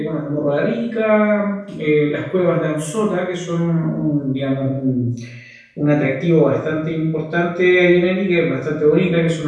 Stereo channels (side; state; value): both; identical; correlation 1.00